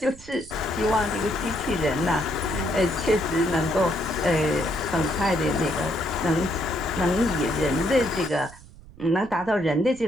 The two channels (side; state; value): right; noise; rumble, 20 dB below the sound